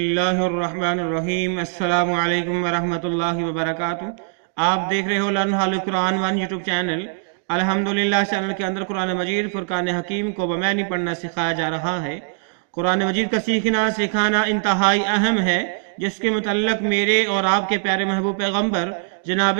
الرحمن الرحیم۔ السلام علیکم ورحمۃ اللہ وبرکاتہ۔ آپ دیکھ رہے ہو لرن ہال قرآن ون یوٹیوب چینل۔ الحمدللہ چینل کے اندر قرآن مجید فرقان حکیم کو بمعنی پڑھنا سکھایا جا رہا ہے۔ قرآن مجید کا سیکھنا سکھانا انتہائی اہم ہے، جس کے متعلق میرے اور آپ کے پیارے محبوب پیغمبر جناب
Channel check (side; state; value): left; silent; digital silence